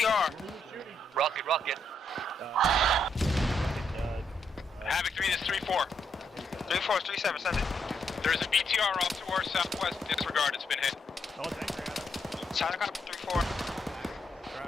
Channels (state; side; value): normal; both; correlation 0.77